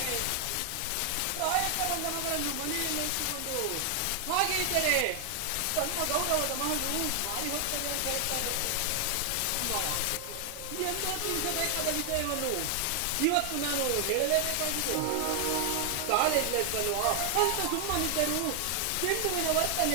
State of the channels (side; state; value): both; different; correlation 0.00